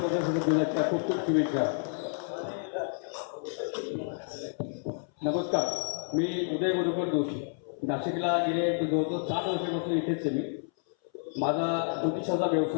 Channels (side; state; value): right; silent; 58 dB below the other